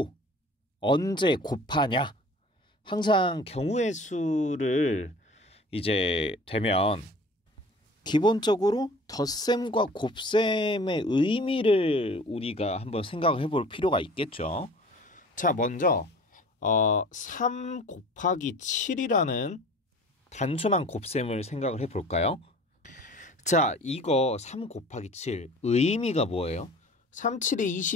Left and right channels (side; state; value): both; normal; correlation 0.45